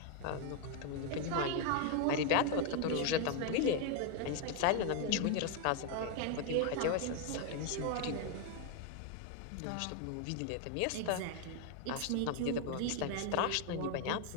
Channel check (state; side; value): different; both; correlation 0.01